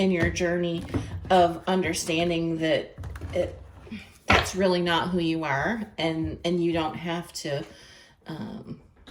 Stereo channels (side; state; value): both; identical; correlation 1.00